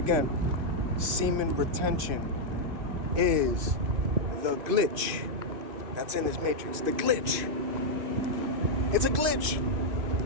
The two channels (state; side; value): late; left; 3.0 ms